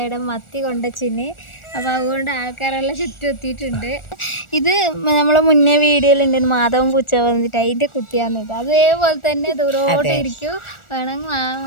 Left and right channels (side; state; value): right; late; 1.4 ms